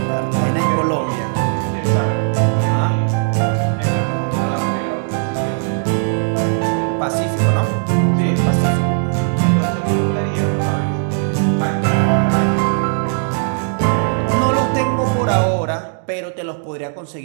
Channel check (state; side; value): silent; left; 67 dB below the other